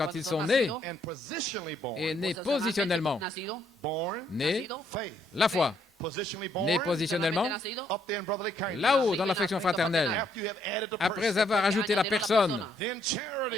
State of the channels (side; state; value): both; normal; correlation 0.71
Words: ils sont nés, et nés positionnellement, nés, la foi, nés positionnellement, là-haut dans l'affection fraternelle, après avoir ajouté la personne,